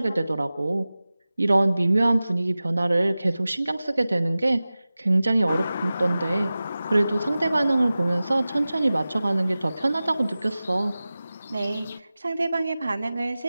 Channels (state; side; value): inverted; both; correlation -0.97